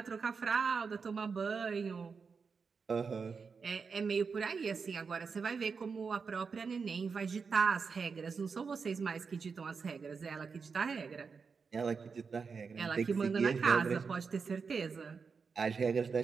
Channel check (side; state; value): left; quieter; 5.3 dB